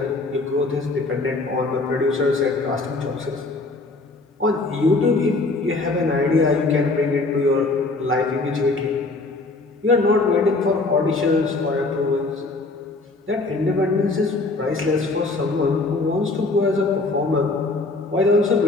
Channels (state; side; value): quieter; right; 3.4 dB